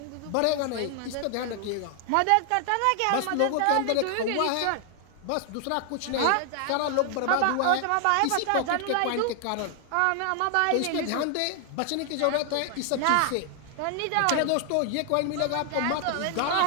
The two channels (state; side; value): different; both; correlation 0.00